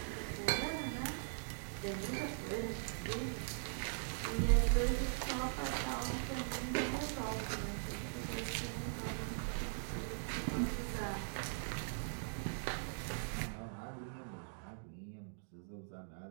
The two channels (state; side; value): silent; left; digital silence